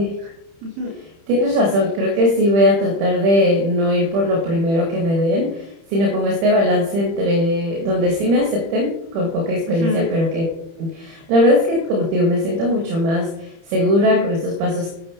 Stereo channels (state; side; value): late; left; 30 ms